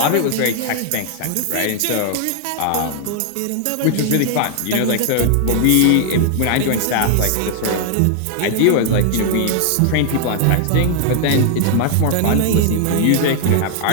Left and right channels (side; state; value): both; different; correlation 0.00